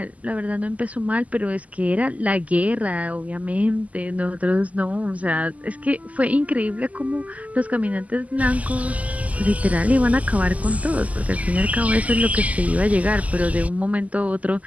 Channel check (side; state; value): left; late; 0.073 ms